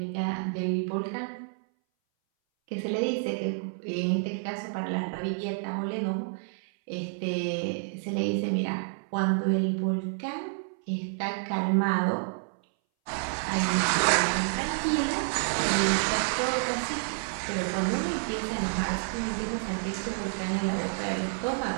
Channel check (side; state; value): left; silent; 59 dB below the other